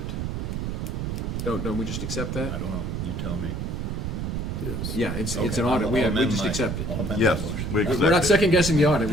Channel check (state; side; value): noise; right; rumble, 2 dB below the sound